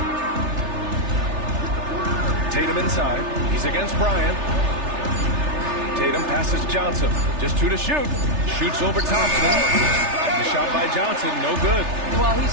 Tatum inside. He's against Bryant. Tatum passes Johnson. Just 2 to shoot. Shoots over Thompson. The shot by Johnson, no good. Well,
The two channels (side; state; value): left; late; 3.3 ms